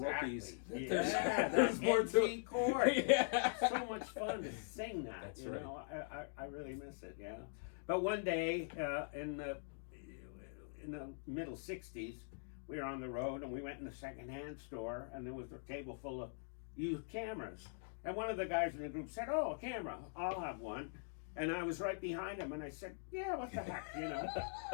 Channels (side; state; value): right; silent; digital silence